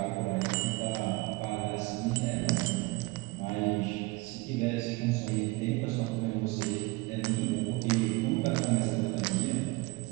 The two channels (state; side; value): quieter; left; 24.0 dB